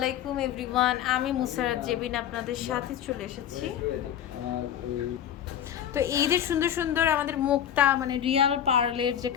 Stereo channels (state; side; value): quieter; right; 10.0 dB